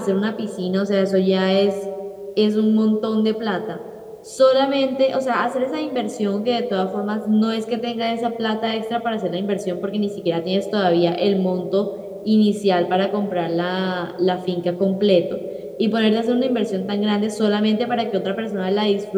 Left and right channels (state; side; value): identical; both; correlation 1.00